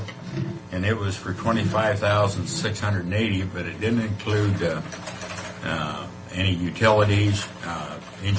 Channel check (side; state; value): both; identical; correlation 1.00